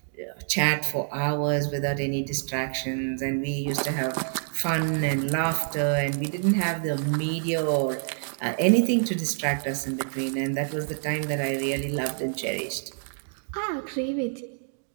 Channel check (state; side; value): silent; left; digital silence